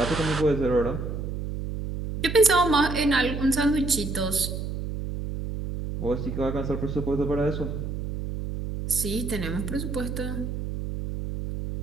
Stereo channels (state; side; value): noise; right; hum, 5 dB below the sound